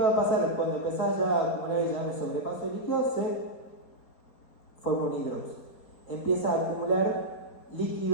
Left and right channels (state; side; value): late; right; 4.3 ms